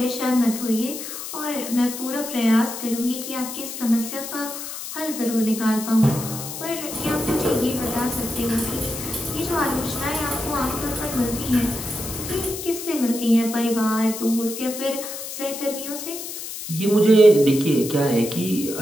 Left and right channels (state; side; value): noise; left; hiss, 8 dB below the sound